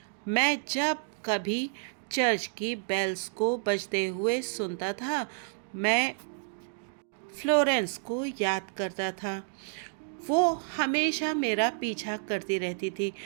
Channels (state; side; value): silent; left; digital silence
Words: मैं जब कभी चर्च की बेल्स को बजते हुए सुनता था, मैं फ्लोरेंस को याद करता था। वो हमेशा मेरा पीछा करती रहती थी,